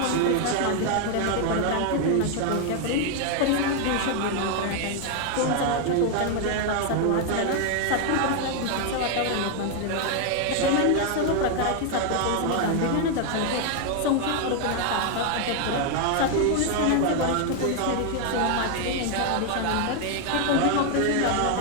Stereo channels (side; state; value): both; different; correlation 0.00